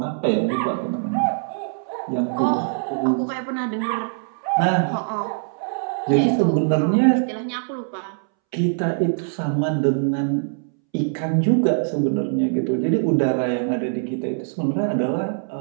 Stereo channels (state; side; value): silent; left; 64 dB below the other